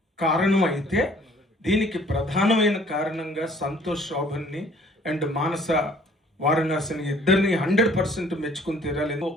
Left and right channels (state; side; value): normal; both; correlation 0.56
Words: కారణం అయితే, దీనికి ప్రధానమైన కారణంగా సంతోష్ శోభన్ని అండ్ మానస వారణాసిని ఇద్దరిని 100% మెచ్చుకుని తీరాలి.